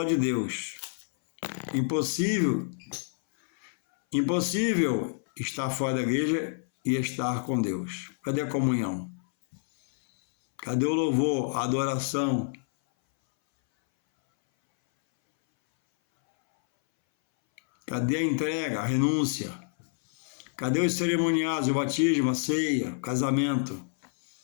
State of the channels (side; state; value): right; silent; 59 dB below the other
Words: de Deus. Impossível estar fora da igreja e estar com Deus. Cadê a comunhão? Cadê o louvor, a adoração? Cadê a entrega, a renúncia? Cadê os cerimoniais, o batismo, a ceia, o casamento?